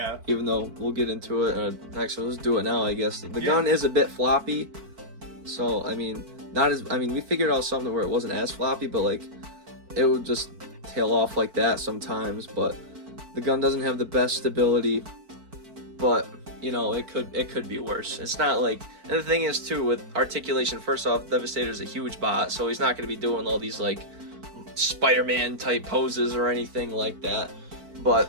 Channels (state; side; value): late; left; 4.5 ms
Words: Even though we'll get into it. Actually, let's do it now. I guess the gun is a bit floppy. So I mean, not as, I mean, we figured out something where it wasn't as floppy, but like it would just tail off like that sometimes. But the gun doesn't have the best stability, but you know, it could be worse. It's not like, and the thing is too with articulation, first off, Devastator's a huge bot, so he's not going to be doing all these like Spider-Man type poses or anything like that. But